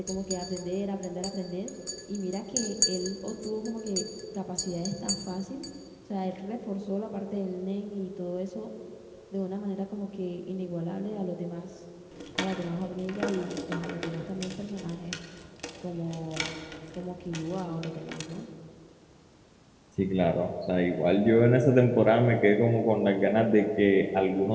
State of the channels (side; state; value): both; identical; correlation 1.00